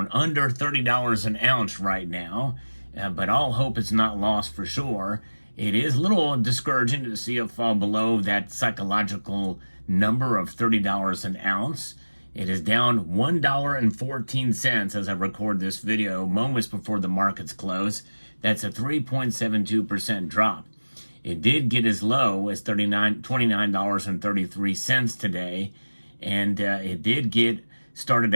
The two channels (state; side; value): inverted; both; correlation -1.00